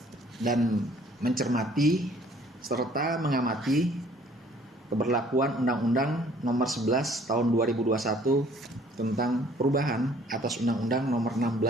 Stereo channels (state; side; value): normal; both; correlation 0.57